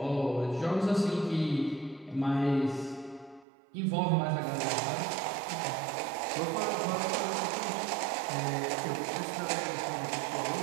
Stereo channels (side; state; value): left; drops out; at 3.5 s